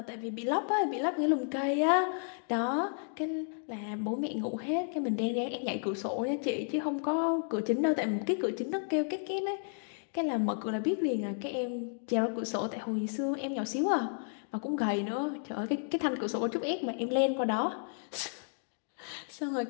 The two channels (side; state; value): right; silent; 56 dB below the other